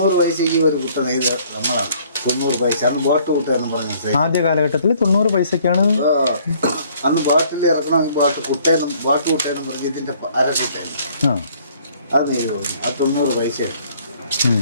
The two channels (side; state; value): both; inverted; correlation -0.60